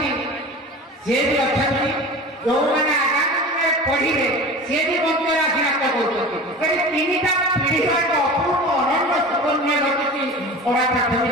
से भी अछंती जो माने आगामी में पढिले से भी मंत्र आशीर्वाद करछंती करी तीनटा पीढ़ी का अपूर्व अनन्य सुकन्या रचिति ओरा प्राथमिक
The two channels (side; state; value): both; normal; correlation 0.35